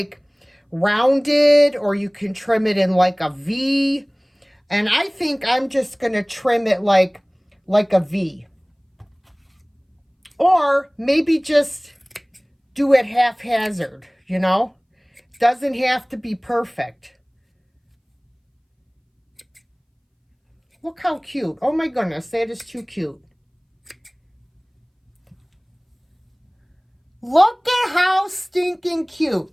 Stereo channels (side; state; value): both; identical; correlation 1.00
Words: rounded, or you can trim it in like a V. And I think I'm just going to trim it like a V. Or maybe just do it haphazard, you know? Doesn't have to be perfect. Look how cute. Oh my goodness, that is too cute. Look at how stinking cute.